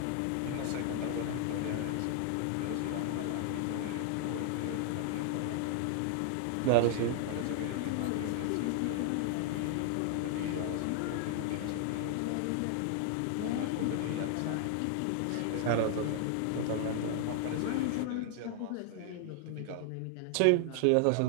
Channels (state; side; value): different; both; correlation 0.00